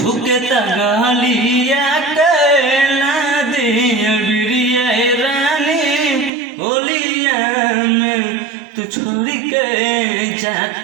गलिया के ना दिया बिरिया रानी होलिया में तू छोड़ी के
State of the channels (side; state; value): left; drops out; at 6.3 s